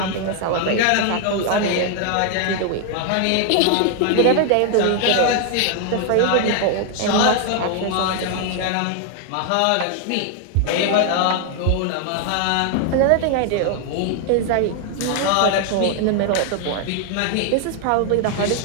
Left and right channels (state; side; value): different; both; correlation 0.00